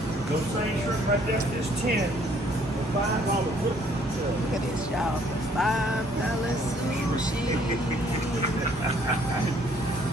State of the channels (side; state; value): both; normal; correlation 0.62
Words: right there is 10. $5 foot. Look at this, y'all. $5 sushi.